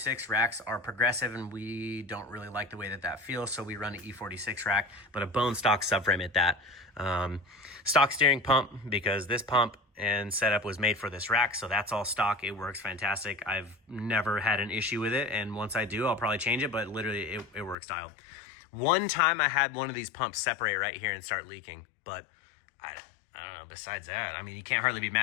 racks are progressive, and we don't really like the way that feels, so we run an E46 rack, but a bone stock subframe at that. Stock steering pump, because this pump and setup was made for this rack, so that's all stock. It works fantastic. I've never had an issue with it, and once I do, I'll probably change it, but literally it works dialed. One time I had one of these pumps separate right here and start leaking, but I don't know, besides that, I mean, you can't hardly be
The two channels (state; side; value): drops out; right; at 17.8 s